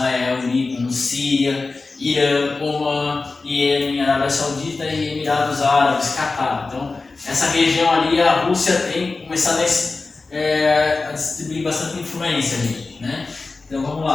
Líbano, Síria, Irã, Omã, Iêmen, Arábia Saudita e Emirados Árabes, Catar. Então, essa região ali, a Rússia tem começado a distribuir bastante influência ali, né? Então, vamos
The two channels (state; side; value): quieter; right; 3.8 dB